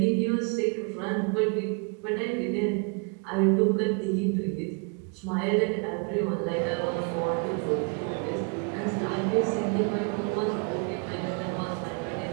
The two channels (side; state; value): left; quieter; 35.7 dB